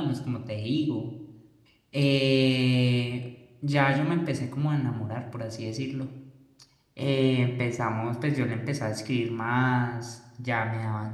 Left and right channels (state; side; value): identical; both; correlation 1.00